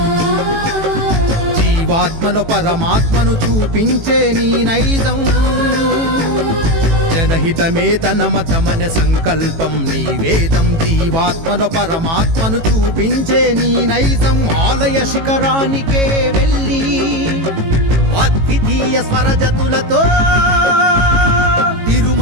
జీవాత్మలో పరమాత్మను చూపించే నీ నైజం. జనహితమే తన మతమన సంకల్పం నీ వేదం, జీవాత్మలో పరమాత్మను చూపించే నీ నైజం. ఆలయ శిఖరానికే వెళ్ళి అద్వితీయ స్వరజతులతో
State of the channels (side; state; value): left; late; 18 ms